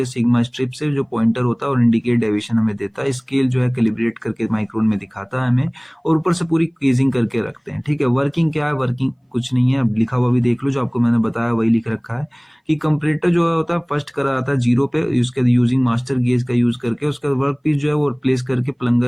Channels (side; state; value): both; identical; correlation 1.00